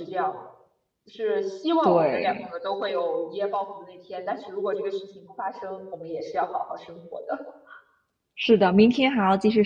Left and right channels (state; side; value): identical; both; correlation 1.00